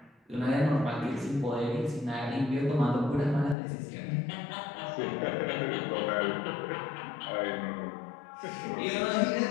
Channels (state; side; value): drops out; right; at 3.6 s